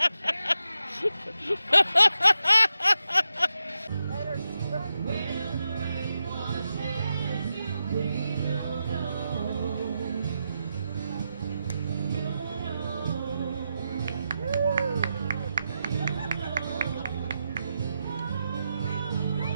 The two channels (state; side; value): inverted; both; correlation -0.87